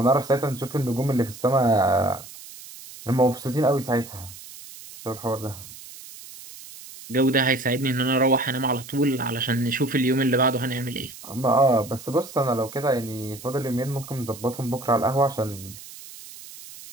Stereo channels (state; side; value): noise; right; hiss, 16 dB below the sound